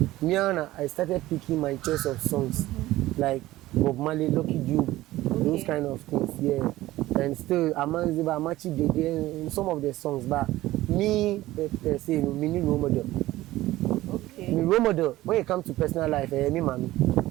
started picking my choice of songs, like Bob Marley, Lucky Dube, those kind of things. Yeah, and still Amanziba, Amachi Dede, some of the songs. But me, say, me need role model. Okay. Me role model when it comes to personal life, me mommy.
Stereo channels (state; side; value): quieter; left; 16.6 dB